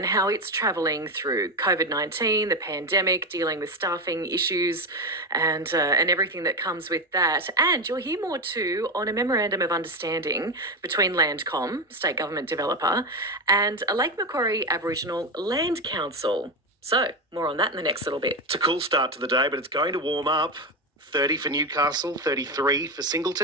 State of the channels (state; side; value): normal; both; correlation 0.14